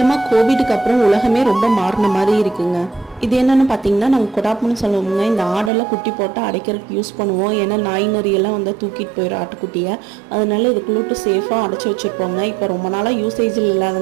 கோவிடுக்கு அப்புறம் உலகமே ரொம்ப மாறின மாதிரி இருக்குங்க. இது என்னென்னு பார்த்தீங்கன்னா நாங்கள் கொடாப்புன்னு சொல்லுவோங்க. இந்த ஆடெல்லாம் குட்டி போட்டு அடைக்கிறதுக்கு யூஸ் பண்ணுவோம். ஏன்னா நாய் நரியெல்லாம் வந்து தூக்கிட்டு போயிடும் ஆட்டுக்குட்டியை. அதனால இதுக்குள்ளூட்டு சேஃபாக அடைச்சி வச்சுருப்போங்க. இப்போ ரொம்ப நாளாக யூசேஜில்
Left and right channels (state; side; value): drops out; left; at 5.7 s